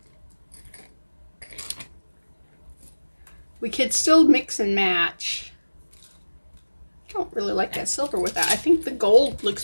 We could still mix and match. I don't really like that silver with that. I think the gold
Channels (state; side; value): inverted; both; correlation -1.00